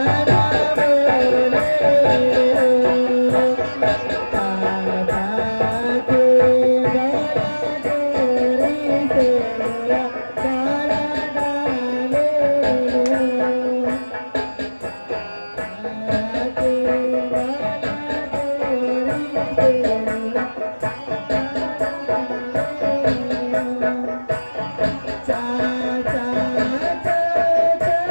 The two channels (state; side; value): inverted; both; correlation -1.00